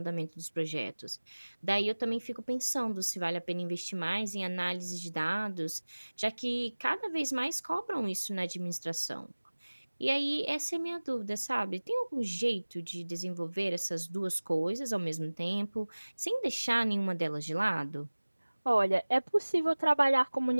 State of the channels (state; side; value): inverted; both; correlation -1.00